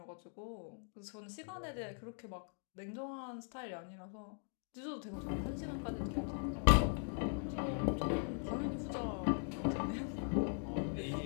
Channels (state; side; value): silent; right; 51 dB below the other